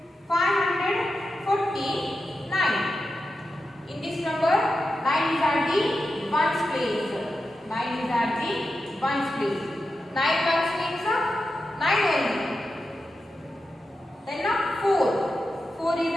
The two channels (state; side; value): normal; both; correlation 0.90